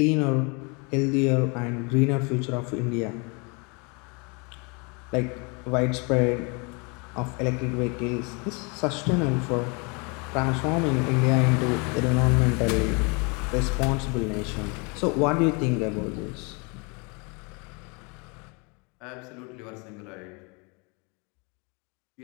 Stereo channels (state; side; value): quieter; right; 31.6 dB